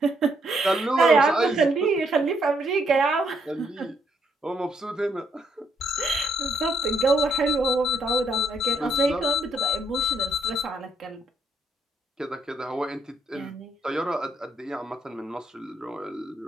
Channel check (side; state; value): both; normal; correlation 0.74